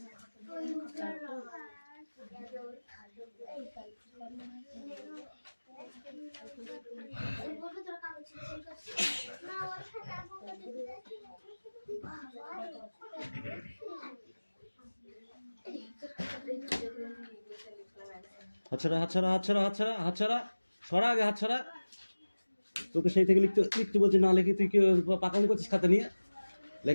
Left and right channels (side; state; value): both; inverted; correlation -1.00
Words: হাতছাড়া হাতছাড়া হাতছাড়া হাতছাড়া হাতছাড়া, সরা আগে হাতছাড়া। তোকে সেই থেকে লিখতে লিখতে বলছি, না লিখে তুই কি পাকাম করছিস খাতা নিয়ে?